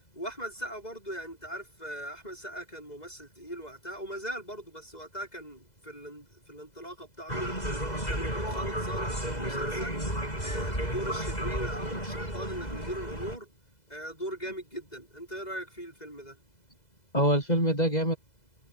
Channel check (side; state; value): right; late; 2.0 ms